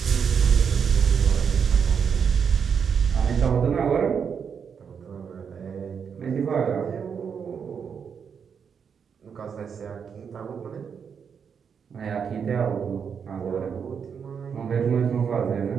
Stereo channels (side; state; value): left; quieter; 6.8 dB